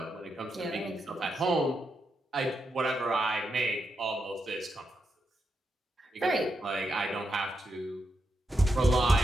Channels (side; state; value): both; normal; correlation 0.84